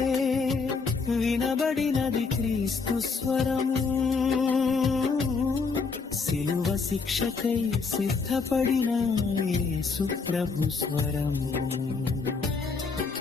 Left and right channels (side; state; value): right; quieter; 4.7 dB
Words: వినబడినది క్రీస్తు స్వరము, సిలువ శిక్షకై సిద్ధపడిన యేసు ప్రభు స్వరము.